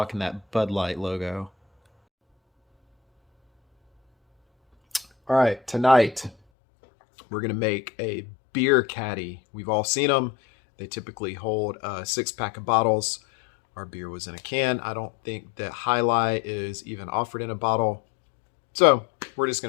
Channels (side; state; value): right; drops out; at 6.4 s